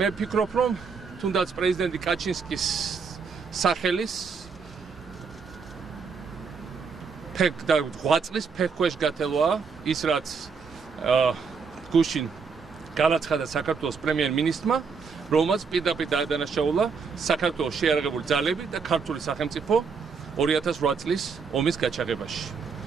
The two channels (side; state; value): left; quieter; 5.4 dB